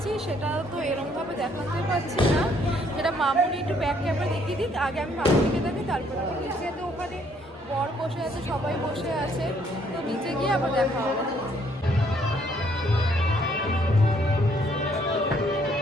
সেটা তো এরকমভাবে দেখাতে পারছি না। সেটা মামুনি একটু ব্যাক ক্যামেরা দেখিয়ে দিক। আগে আমি মামুনিকে দেখি, তারপরে নিচে তো ওখানে বর বসে আছে, সবাই বসে আছে, তো নিচে গিয়ে আবার দেখা হবে।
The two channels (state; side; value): normal; both; correlation 0.66